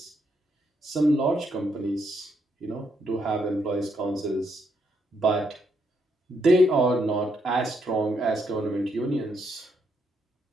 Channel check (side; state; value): both; normal; correlation 0.76